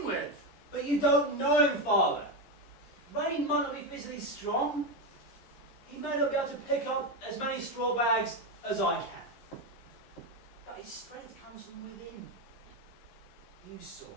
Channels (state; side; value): late; right; 11 ms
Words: with. But you don't know him, Father. Rain might not be physically strong. He may not be able to pick up as many straw bags as I can. But his strength comes from within. You saw